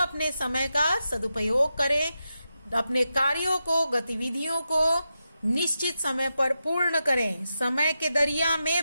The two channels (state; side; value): inverted; both; correlation -0.89